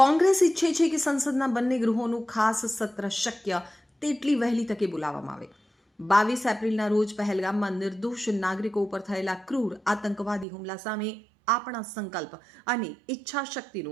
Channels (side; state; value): left; drops out; at 10.5 s